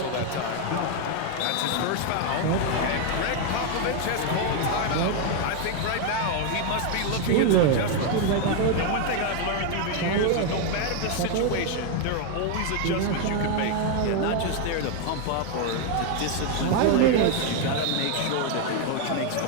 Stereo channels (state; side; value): different; both; correlation 0.01